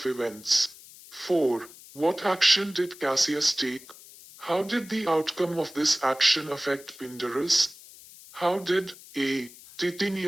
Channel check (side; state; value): left; noise; hiss, 20 dB below the sound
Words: events. 4. What action did Cassius take? How did the outcome of this action affect Pindarus? How did A.